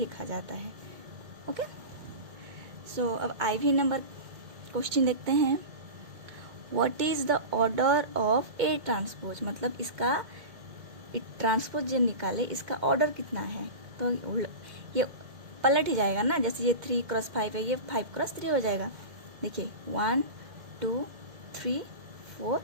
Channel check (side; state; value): left; late; 2.1 ms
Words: जाता है। ओके, सो अब IV नंबर क्वेश्चन देखते हैं। What is the order of A transpose, मतलब इसका ट्रांसपोज जब निकाले इसका ऑर्डर कितना है। तो ये पलट ही जाएगा ना, जैसे ये 3 क्रॉस 5 है, ये 5 क्रॉस 3 हो जाएगा। देखिए 1 2 3 4